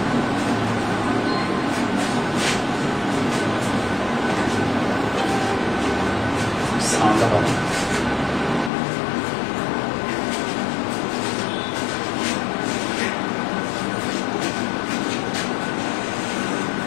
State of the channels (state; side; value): drops out; right; at 8.7 s